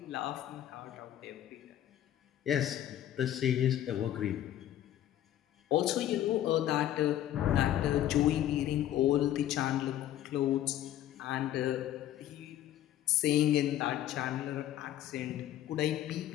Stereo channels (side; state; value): right; quieter; 12.3 dB